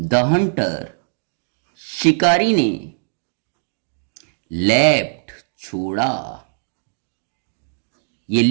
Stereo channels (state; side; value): silent; left; digital silence